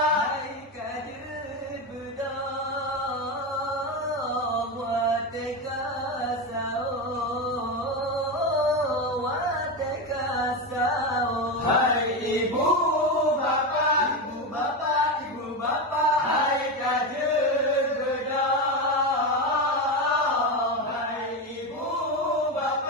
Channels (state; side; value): normal; both; correlation 0.15